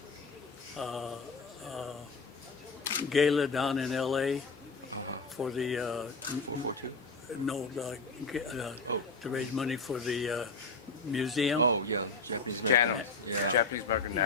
gala down in L.A. for the 442. no Oh. to raise money for the museum. Oh yeah, Japanese American. Canon. Yeah. Japanese American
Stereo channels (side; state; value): right; quieter; 3.9 dB